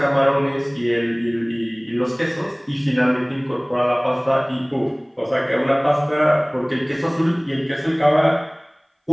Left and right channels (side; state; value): both; identical; correlation 1.00